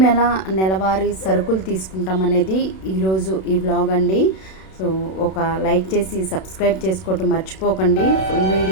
నెలవారీ సరుకులు తీసుకుంటామనేది ఈరోజు ఈ వ్లాగ్ అండి. సో ఒక లైక్ చేసి సబ్స్క్రైబ్ చేసుకోవటం మర్చిపోకండి. ఫుల్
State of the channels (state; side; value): late; right; 32 ms